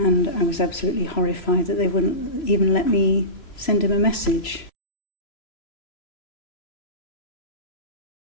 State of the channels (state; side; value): late; right; 3.0 ms